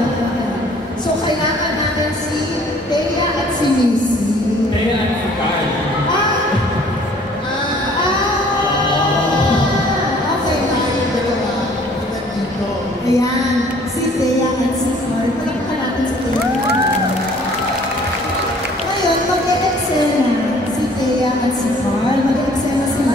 So kailangan natin si Thea at si Missy. Thea at si Carl. Ayan, si Thea at si Carl. Palakpan natin si Thea. Ngayon, mag-e-eksena si Thea at si Carl. Mag-e-eksena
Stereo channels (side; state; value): both; normal; correlation 0.55